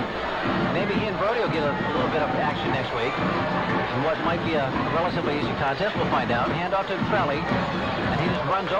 Maybe he and Brody will get a little bit of action next week. And what might be a relatively easy contest, we'll find out. Hand off to Trelli, and he just runs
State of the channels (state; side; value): identical; both; correlation 1.00